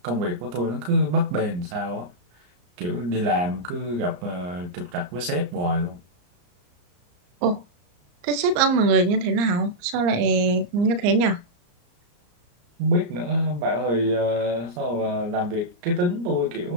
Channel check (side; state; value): left; late; 34 ms